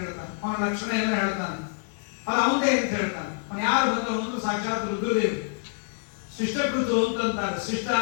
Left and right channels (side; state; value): right; silent; 60 dB below the other